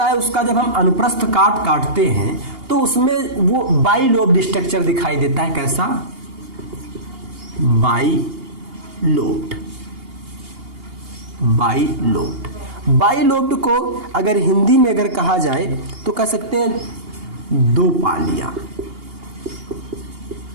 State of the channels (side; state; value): left; late; 2.8 ms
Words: है उसका जब हम अनुप्रस्थ काटते हैं तो उसमें वो बाइलोब्ड स्ट्रक्चर दिखाई देता है। कैसा? बाइलोब्ड। बाइलोब्ड को अगर हिंदी में अगर कहा जाए तो कह सकते हैं दो